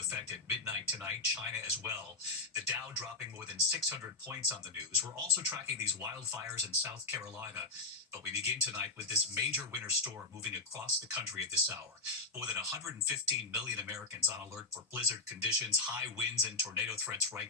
at midnight tonight. China as well. The Dow dropping more than 600 points on the news. We're also tracking these wildfires in South Carolina. But we begin tonight with this major winter storm moving across the country at this hour. More than 115 million Americans on alert for blizzard conditions, high winds and tornado threats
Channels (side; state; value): right; quieter; 3.4 dB